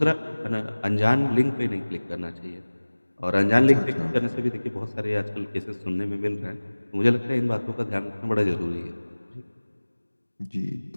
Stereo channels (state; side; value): inverted; both; correlation -1.00